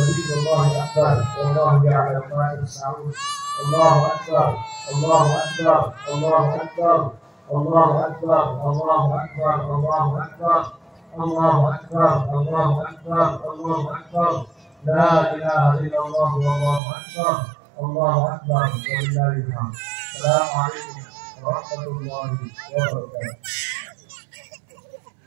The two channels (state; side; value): drops out; left; at 16.8 s